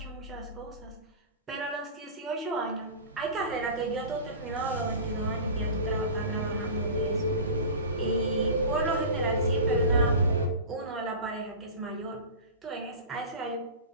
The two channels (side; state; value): both; inverted; correlation -0.33